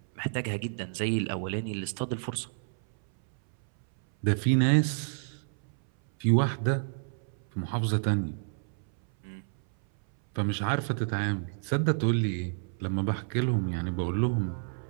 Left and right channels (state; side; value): silent; left; 58 dB below the other